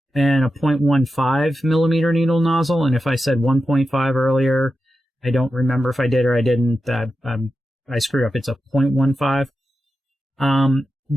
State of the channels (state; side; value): normal; both; correlation 0.91